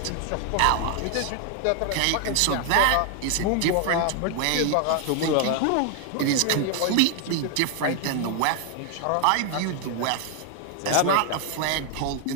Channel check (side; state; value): both; different; correlation 0.00